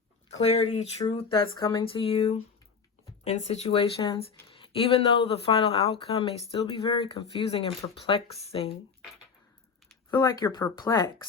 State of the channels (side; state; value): right; quieter; 5.7 dB